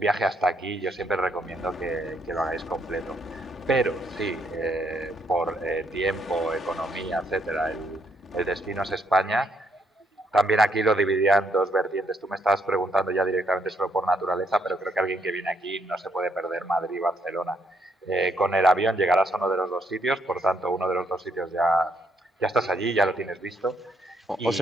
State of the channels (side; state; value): both; normal; correlation 0.72